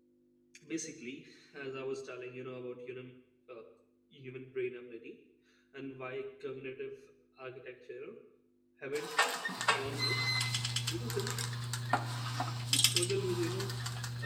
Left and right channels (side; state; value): both; identical; correlation 1.00